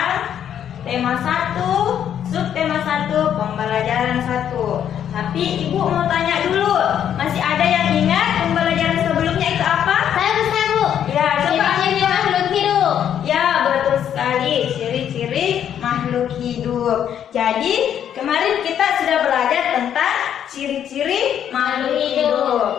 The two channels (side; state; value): right; quieter; 9.5 dB